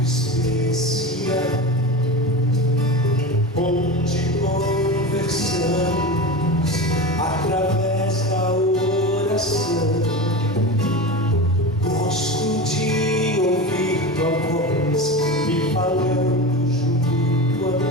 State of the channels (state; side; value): normal; both; correlation 0.26